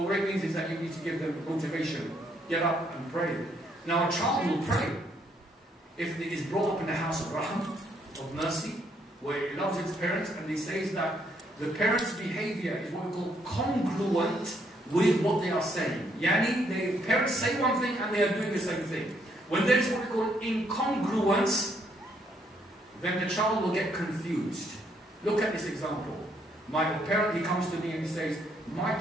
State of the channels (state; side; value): normal; both; correlation 0.71